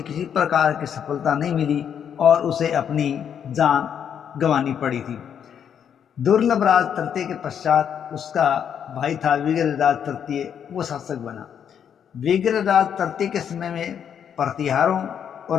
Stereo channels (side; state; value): right; quieter; 8.4 dB